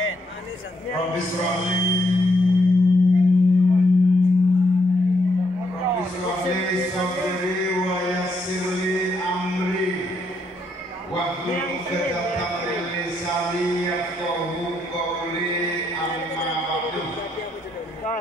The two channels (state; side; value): normal; both; correlation 0.76